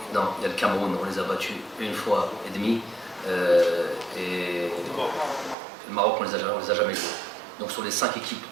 Non, il y a le Cameroun. On les a battus 1 fois et demie. Et le Maroc, on les a jamais joués. Donc sur les 5 équipes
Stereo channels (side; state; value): left; drops out; at 5.6 s